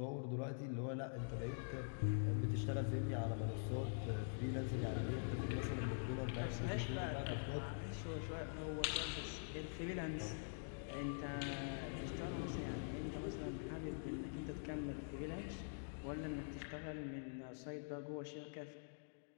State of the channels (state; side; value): silent; right; digital silence